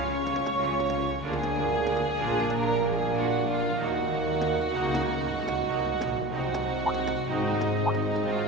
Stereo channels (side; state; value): both; normal; correlation 0.37